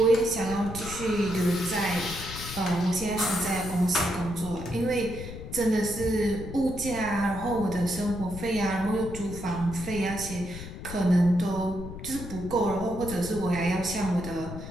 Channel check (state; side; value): noise; left; rumble, 10 dB below the sound